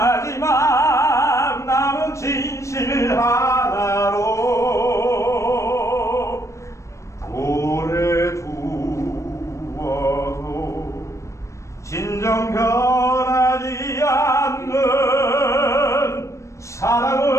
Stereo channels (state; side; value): late; right; 0.15 ms